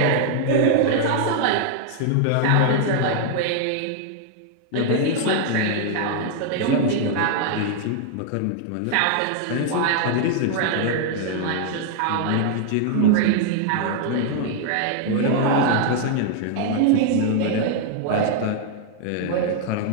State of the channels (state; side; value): different; both; correlation -0.01